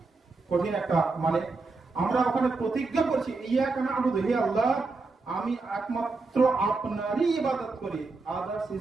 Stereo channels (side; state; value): left; quieter; 3.8 dB